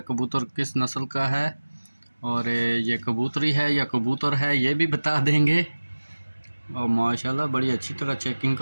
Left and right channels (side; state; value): both; inverted; correlation -1.00